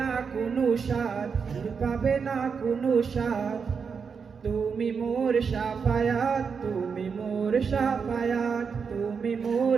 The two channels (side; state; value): left; quieter; 5.9 dB